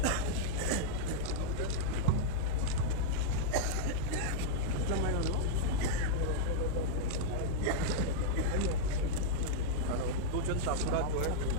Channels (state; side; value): different; both; correlation -0.02